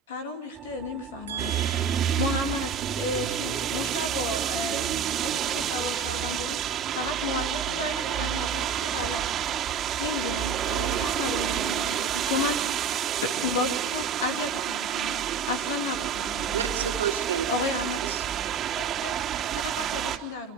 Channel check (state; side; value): quieter; left; 5.1 dB